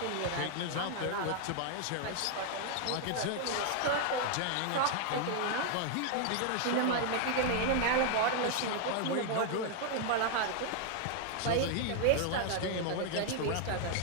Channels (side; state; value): both; different; correlation 0.00